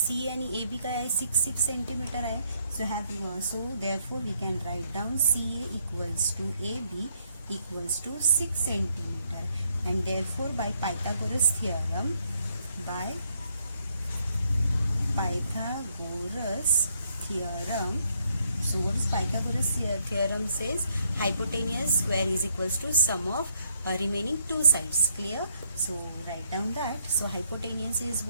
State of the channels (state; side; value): inverted; both; correlation -0.72